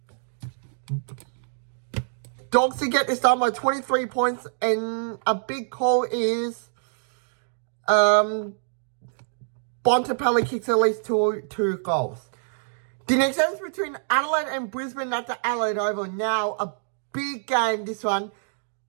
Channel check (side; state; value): left; silent; digital silence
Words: Dogs to get this done by 23 points, and a big call is Bontempelli kicks at least two goals. The next game is between Adelaide and Brisbane at the Adelaide Oval. Now, a big game, this one.